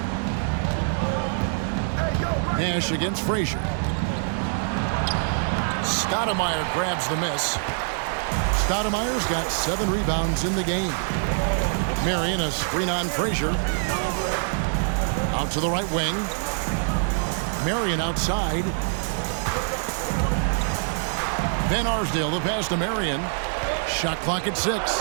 Nash against Frazier. Stoudemire grabs the miss. Stoudemire's got 7 rebounds in the game. Marion a screen on Frazier. Out to the right wing. Marion outside. Van Arsdale the pass to Marion. Shot clock at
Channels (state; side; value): silent; left; 62 dB below the other